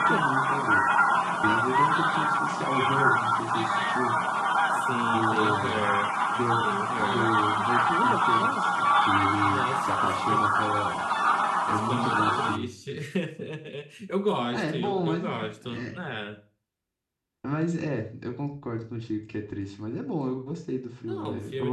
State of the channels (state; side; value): identical; both; correlation 1.00